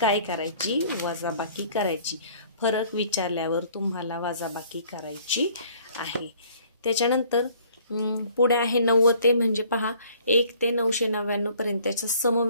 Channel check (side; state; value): both; inverted; correlation -0.57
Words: करायची, वजाबाकी करायची. फरक विचारल्यावर तुम्हाला वजाबाकी करायची आहे. त्याच्यानंतर पुढे आहे 90 ते म्हणजे पहा 1 ते 999 पर्यंतच्या